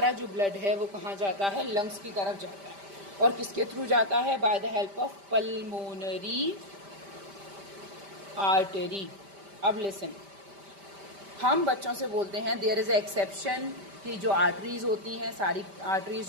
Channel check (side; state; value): left; late; 5.1 ms